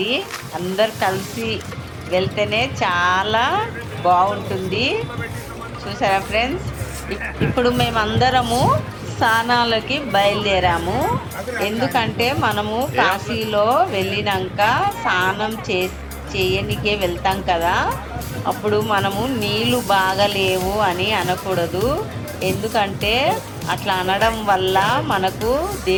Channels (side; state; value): both; identical; correlation 1.00